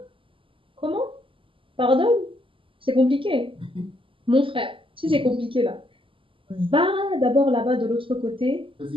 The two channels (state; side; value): late; left; 0.25 ms